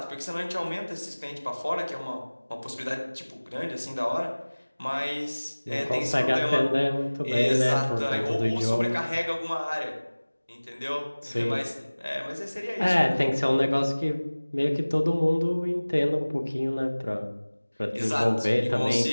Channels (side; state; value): both; inverted; correlation -1.00